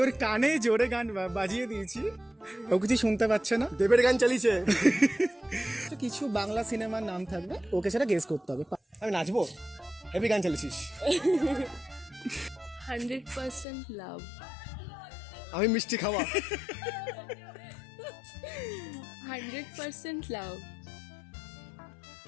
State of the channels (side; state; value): right; drops out; at 13.7 s